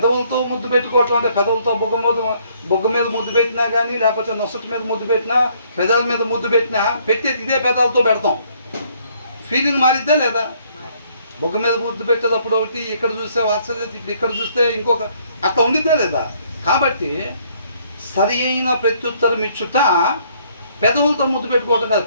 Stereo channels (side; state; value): both; inverted; correlation -0.66